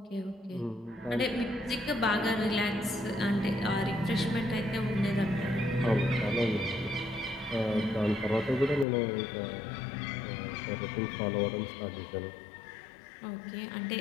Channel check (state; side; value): drops out; right; at 8.8 s